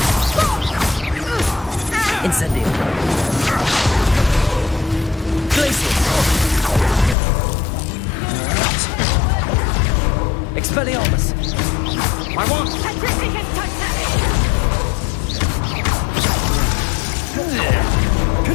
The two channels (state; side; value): drops out; right; at 7.2 s